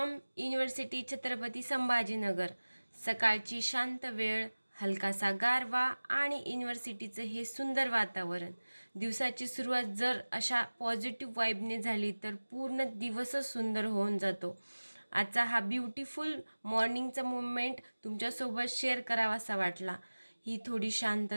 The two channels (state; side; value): inverted; both; correlation -1.00